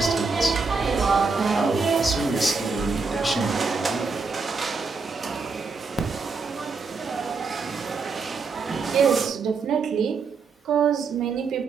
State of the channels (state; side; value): quieter; left; 4.6 dB